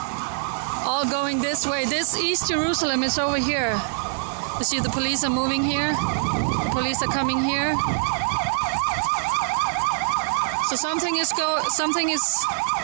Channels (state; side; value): silent; left; 63 dB below the other